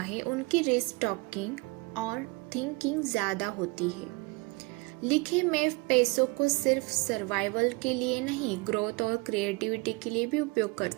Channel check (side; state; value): left; quieter; 26.5 dB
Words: उनकी रिस्क टॉकिंग और थिंकिंग ज्यादा होती है। लिखे मैं पैसों को सिर्फ सर्वाइवल के लिए नहीं, ग्रोथ और क्रिएटिविटी के लिए भी उपयोग